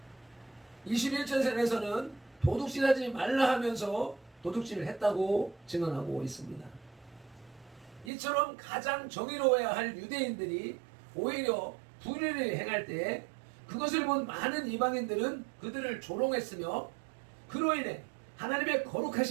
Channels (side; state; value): left; drops out; at 8.1 s